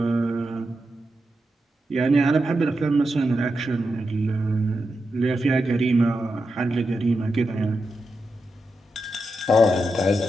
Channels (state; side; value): normal; both; correlation 0.87